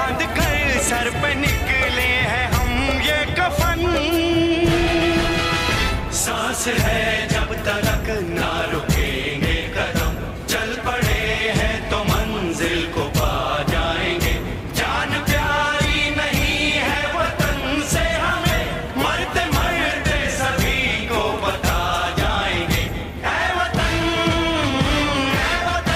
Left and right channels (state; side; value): identical; both; correlation 1.00